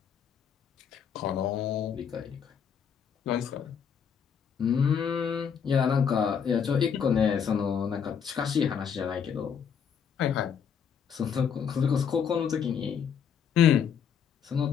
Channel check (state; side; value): quieter; right; 7.4 dB